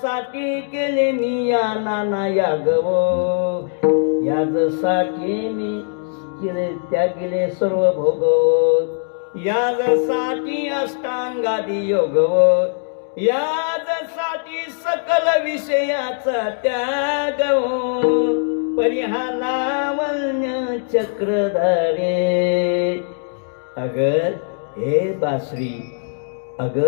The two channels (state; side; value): silent; right; 66 dB below the other